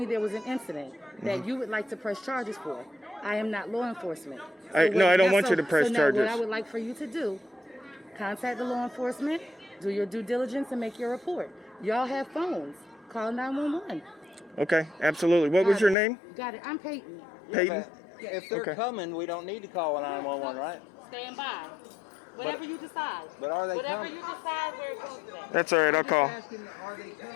there was an incident that you would like to press charges for. I am not law enforcement. I don't want you to press now charges. What I would like for you to do, contact the law enforcement, do your due diligence, and make your report. Y'all have phones. Call 911. Okay, absolutely. What was Got your it. name? Got it. I'm Peyton. Peyton? If they're Okay. coming, we don't need to call 911, right? Stand by. Whatever you decide. But are they Whatever coming? you decide, where it goes today. That's all right. I'll call. Asking, are they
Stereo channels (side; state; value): right; drops out; at 16.0 s